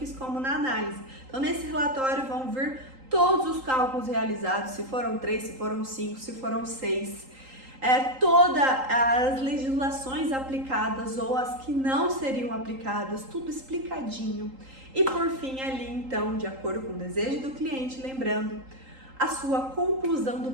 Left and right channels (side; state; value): left; late; 3.8 ms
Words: como na análise. Então nesse relatório vão vir todos os cálculos realizados, se foram 3, se foram 5, se foram 6, todas as legislações aplicadas ou as que não seriam aplicadas, tudo explicadinho. E por fim ali então, de acordo com o desejo do cliente, lembrando a sua conclusão do